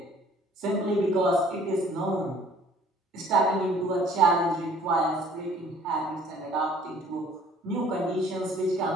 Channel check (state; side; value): normal; both; correlation 0.55